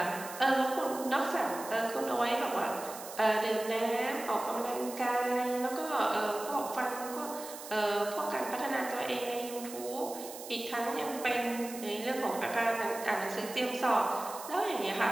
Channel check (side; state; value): right; noise; hiss, 12 dB below the sound